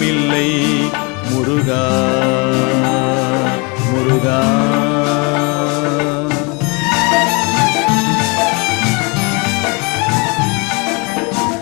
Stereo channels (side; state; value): right; quieter; 30.7 dB